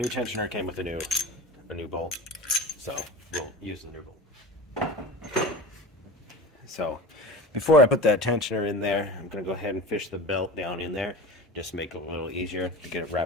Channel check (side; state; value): both; normal; correlation 0.32